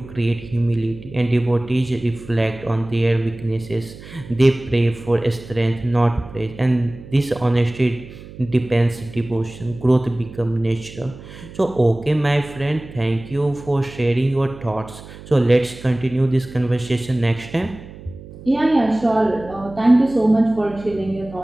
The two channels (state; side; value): noise; right; hum, 17 dB below the sound